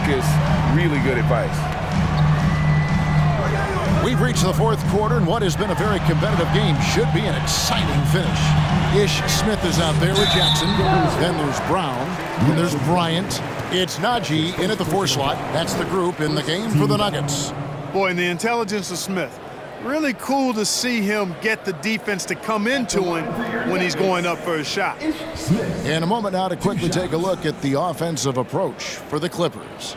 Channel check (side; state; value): both; identical; correlation 1.00